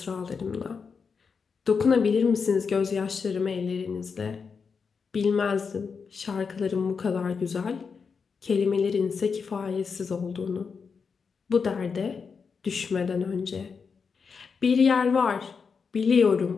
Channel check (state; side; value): quieter; right; 5.6 dB